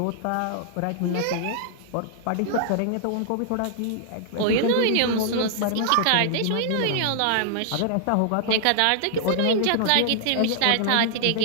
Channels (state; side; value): different; both; correlation -0.01